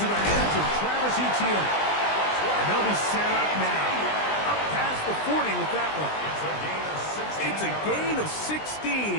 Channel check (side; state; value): right; late; 20 ms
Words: the hands of Travis Etienne. And they'll be set up now. Up past the 40 with that one. It's a gain of